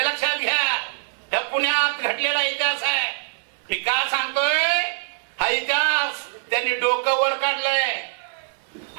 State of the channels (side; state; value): left; silent; digital silence